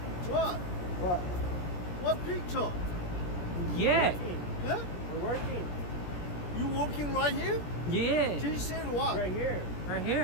What? What picture? Yeah. Huh? We're working. You working right here? Yeah. She said what? Right here. Right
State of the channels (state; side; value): late; right; 17 ms